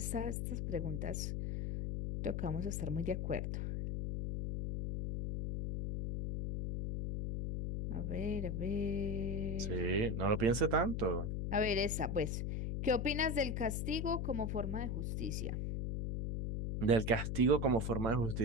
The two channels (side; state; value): left; noise; hum, 1 dB below the sound